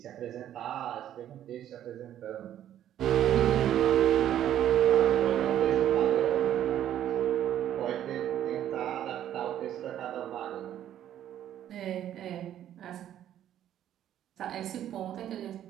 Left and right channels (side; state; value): left; quieter; 11.2 dB